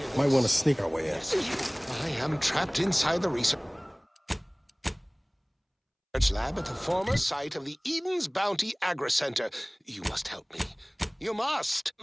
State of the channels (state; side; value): identical; both; correlation 1.00